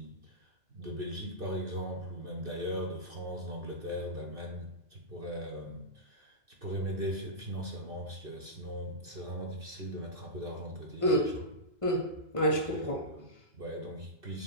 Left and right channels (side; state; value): left; late; 2.6 ms